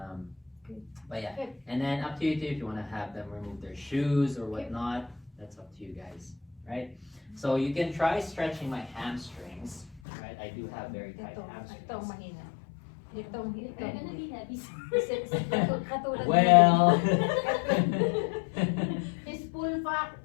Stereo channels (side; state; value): right; drops out; at 10.0 s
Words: Okay. But yeah, Okay. and then up to you too if you want to have them remove their shoes or whatnot. That's up to you guys, right? So you can try stretching my hamstrings, right? I do have very tight Itong hamstrings. mahina. Itong They're gonna be heavy. katulad Well, his full fat,